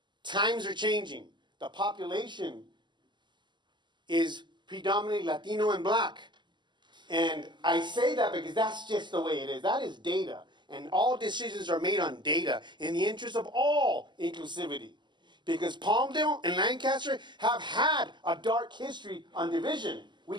times are changing. The population is predominantly Latino and Black. And I say that because that's just the way it is. That is data. And all decisions are made on data in the interest of all inclusivity. Because Palmdale and Lancaster have had a dark history on division. We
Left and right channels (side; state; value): left; late; 0.22 ms